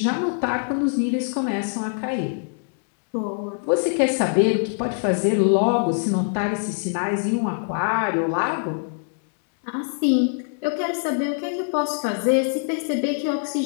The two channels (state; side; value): silent; right; 63 dB below the other